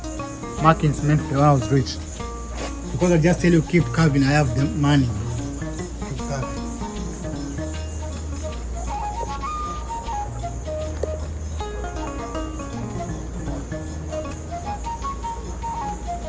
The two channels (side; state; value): both; identical; correlation 1.00